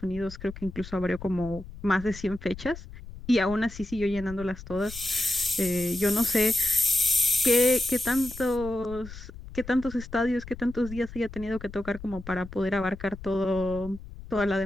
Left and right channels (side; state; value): left; noise; rumble, 14 dB below the sound